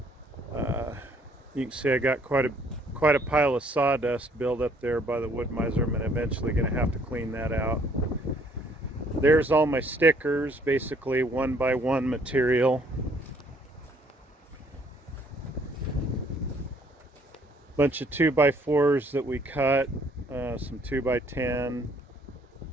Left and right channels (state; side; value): normal; both; correlation 0.63